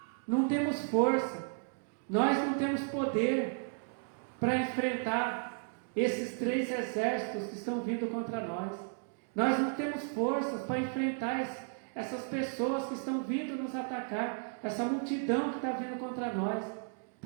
não temos força, nós não temos poder para enfrentar esses 3 exércitos que estão vindo contra nós. Nós não temos forças para enfrentar essas pessoas que estão vindo nos atacar, essa multidão que está vindo contra nós,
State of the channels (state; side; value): silent; left; 55 dB below the other